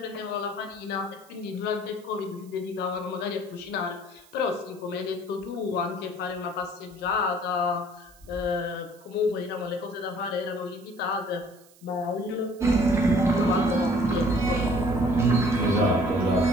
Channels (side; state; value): right; noise; hiss, 27 dB below the sound